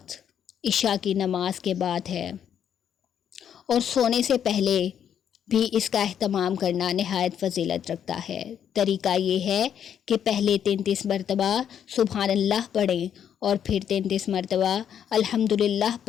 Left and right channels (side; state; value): right; quieter; 9.0 dB